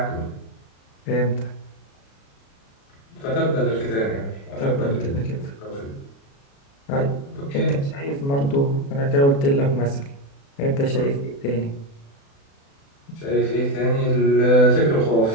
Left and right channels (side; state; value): right; late; 36 ms